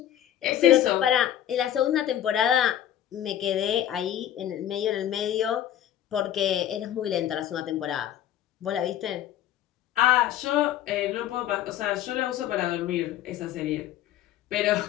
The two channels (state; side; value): quieter; right; 11.3 dB